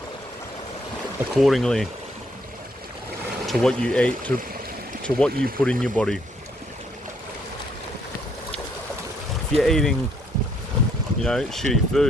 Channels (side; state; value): both; normal; correlation 0.69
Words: accordingly to what you eat, to what you put in your body. If you're eating, shitty